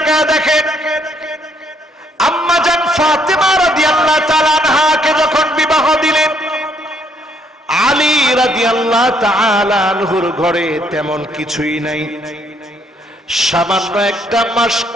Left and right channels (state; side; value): normal; both; correlation 0.68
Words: দেখেন। আম্মা জান ফাতেমা রাদিয়াল্লাহু তাআলা আনহাকে যখন বিবাহ দিলেন, আলী রাদিয়াল্লাহু তাআলা আনহুর ঘরে তেমন কিছুই নাই। সামান্য একটা মাস